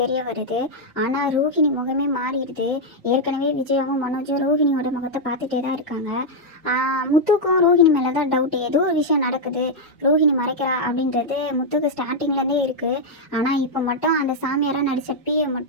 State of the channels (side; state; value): both; normal; correlation -0.02